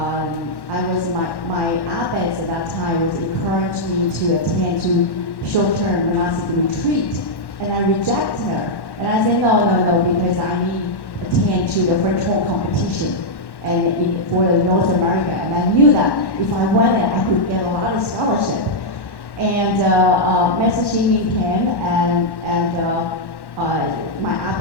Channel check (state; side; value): late; right; 1.1 ms